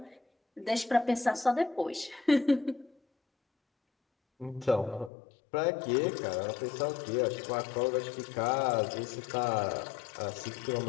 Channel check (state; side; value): drops out; right; at 5.1 s